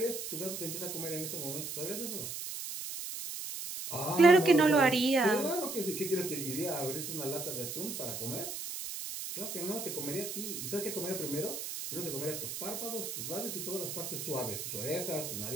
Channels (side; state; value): right; noise; hiss, 6 dB below the sound